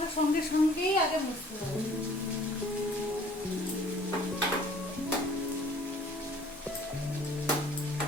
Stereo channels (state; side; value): normal; both; correlation 0.54